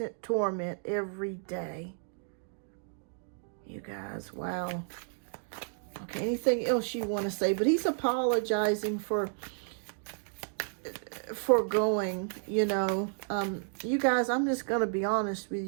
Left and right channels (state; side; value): silent; left; digital silence